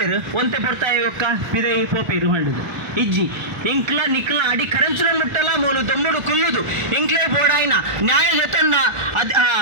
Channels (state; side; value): late; left; 1.5 ms